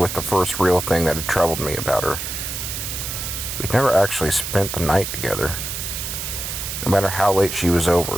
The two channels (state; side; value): noise; right; hiss, 5 dB below the sound